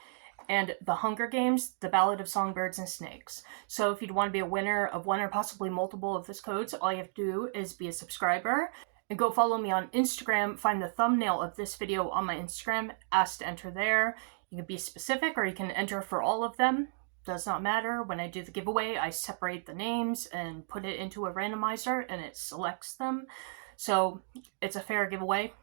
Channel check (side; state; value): left; silent; digital silence